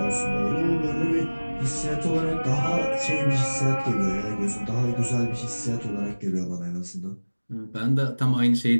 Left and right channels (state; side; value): inverted; both; correlation -1.00